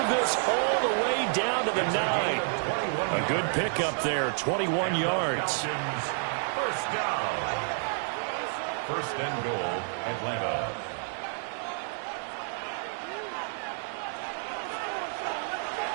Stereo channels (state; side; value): silent; left; 58 dB below the other